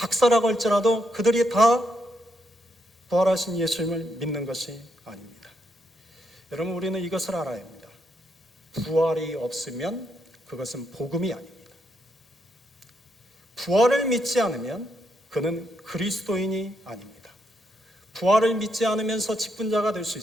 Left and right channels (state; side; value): normal; both; correlation 0.79